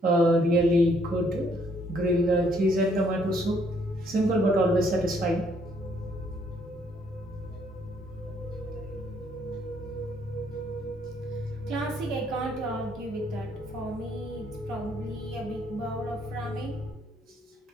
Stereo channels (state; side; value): normal; both; correlation 0.67